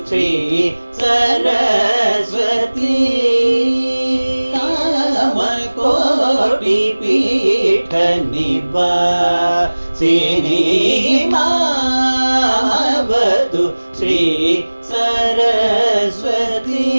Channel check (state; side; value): inverted; both; correlation -1.00